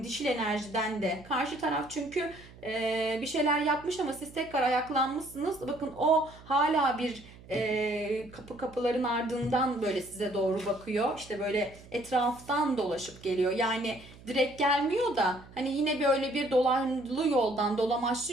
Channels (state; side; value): noise; right; hum, 21 dB below the sound